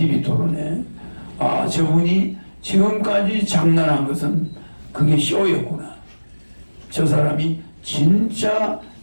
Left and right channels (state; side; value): inverted; both; correlation -1.00